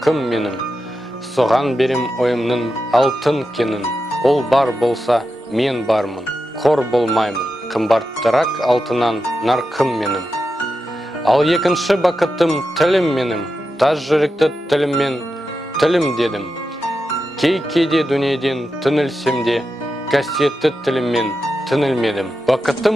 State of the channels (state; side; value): normal; both; correlation 0.89